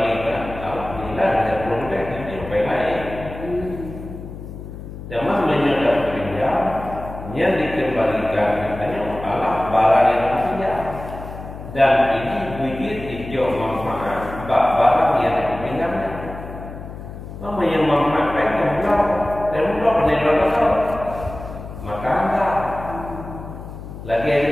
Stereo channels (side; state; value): left; noise; hum, 12 dB below the sound